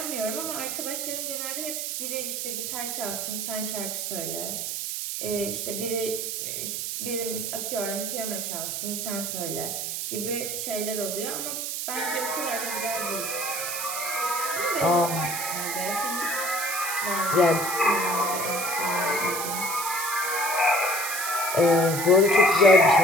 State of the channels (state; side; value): noise; right; hiss, 3 dB below the sound